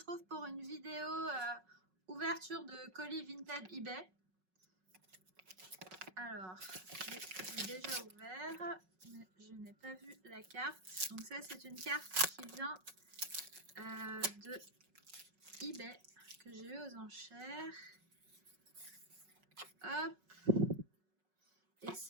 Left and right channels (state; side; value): late; left; 5.4 ms